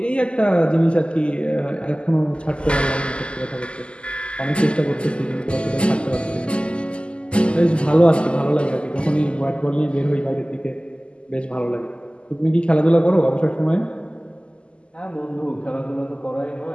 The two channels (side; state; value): right; late; 0.052 ms